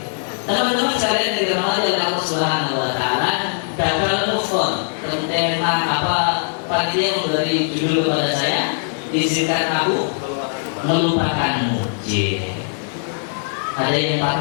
Teman-teman sekalian yang dirahmati oleh Allah Subhanahu Wa Taala, gagal move on. Tentang apa panitia memberi judul kepada saya, izinkan aku melupakanmu. Ada yang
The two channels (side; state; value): right; silent; digital silence